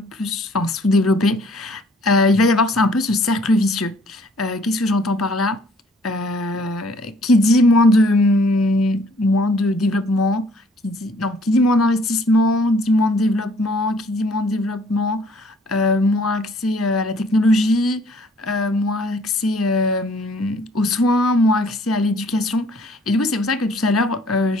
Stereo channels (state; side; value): normal; both; correlation 0.59